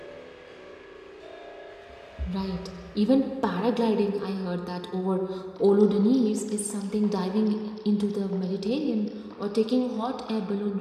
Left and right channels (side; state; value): both; identical; correlation 1.00